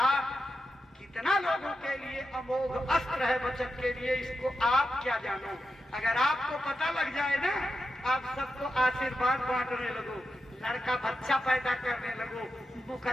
कितना लोगों के लिए अमोघ अस्त्र है बचत के लिए, इसको आप क्या जानो। अगर आपको पता लग जाए ना, आप सबको आशीर्वाद बांटने लगो, लड़का बच्चा पैदा करने लगो,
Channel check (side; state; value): both; normal; correlation 0.89